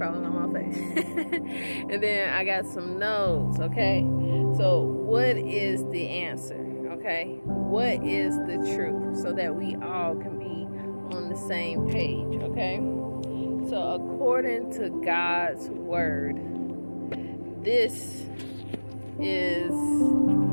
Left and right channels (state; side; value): inverted; both; correlation -1.00